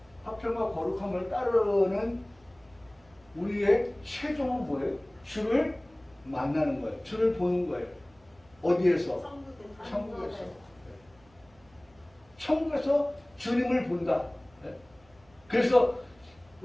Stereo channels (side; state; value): right; noise; hum, 30 dB below the sound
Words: 화평과 거룩함을 따르는 우리의 최종은 뭐예요? 주를 만나는 거예요. 주를 보는 거예요. 어디에서? 천국에서. 천국에서 주님을 본다. 그래서